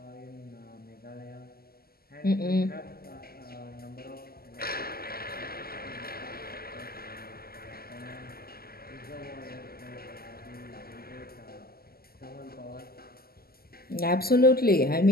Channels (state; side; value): late; right; 0.45 ms